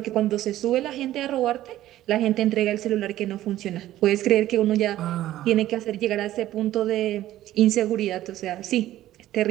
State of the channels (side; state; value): left; quieter; 14.0 dB